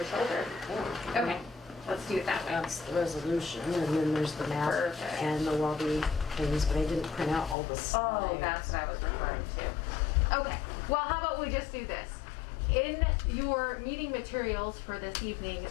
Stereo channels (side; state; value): right; drops out; at 7.6 s